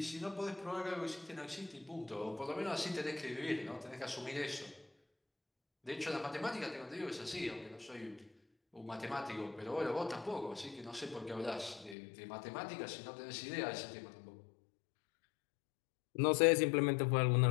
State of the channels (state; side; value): drops out; right; at 12.0 s